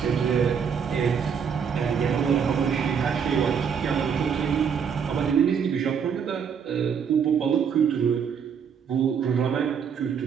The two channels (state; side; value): quieter; left; 7.0 dB